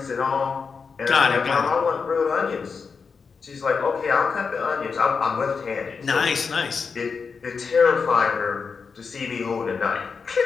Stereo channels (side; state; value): right; quieter; 5.4 dB